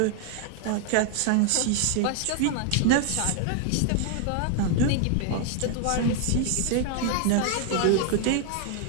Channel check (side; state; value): both; different; correlation 0.00